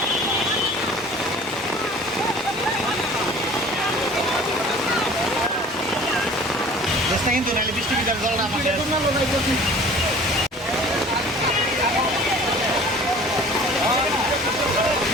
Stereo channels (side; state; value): both; normal; correlation 0.47